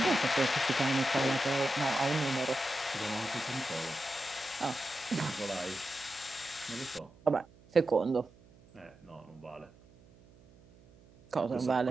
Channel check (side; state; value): right; noise; hum, 25 dB below the sound